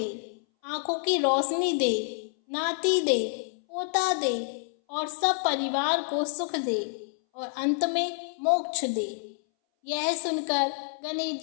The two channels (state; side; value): silent; right; 59 dB below the other